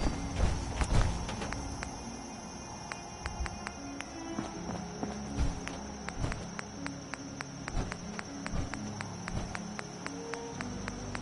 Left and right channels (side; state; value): both; identical; correlation 1.00